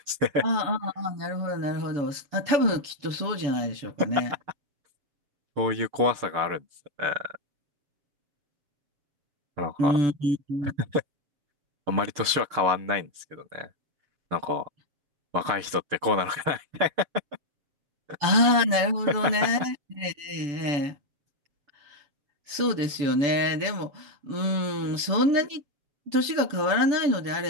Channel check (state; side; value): late; left; 7.3 ms